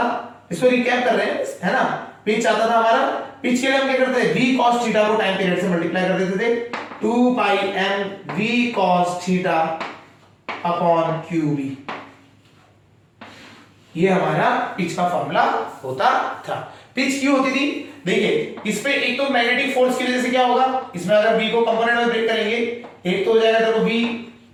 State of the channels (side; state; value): both; identical; correlation 1.00